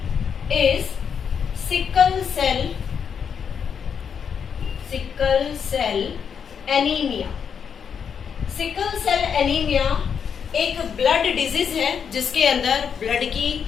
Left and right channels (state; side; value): quieter; right; 7.1 dB